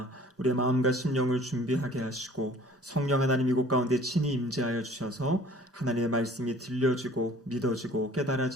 우리의 마음과 심령을 준비하게 하시고 성령 하나님 이곳 가운데 친히 임재하여 주셔서 하나님의 말씀이 들려지고 믿어지고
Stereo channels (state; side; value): normal; both; correlation 0.51